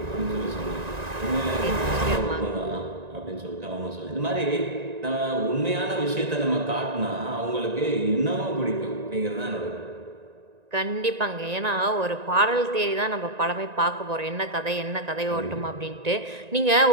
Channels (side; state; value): left; late; 1.9 ms